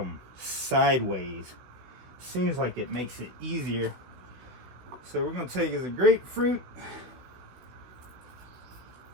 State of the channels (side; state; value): left; late; 16 ms